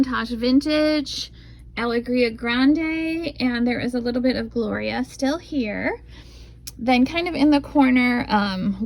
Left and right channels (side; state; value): both; identical; correlation 1.00